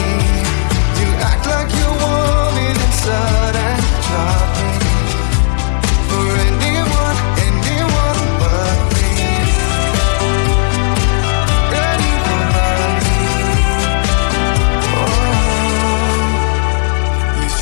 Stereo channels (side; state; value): right; silent; digital silence